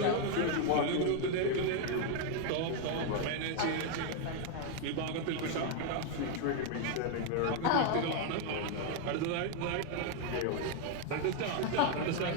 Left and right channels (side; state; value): both; different; correlation 0.00